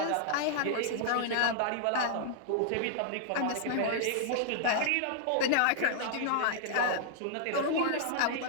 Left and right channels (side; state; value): both; different; correlation -0.01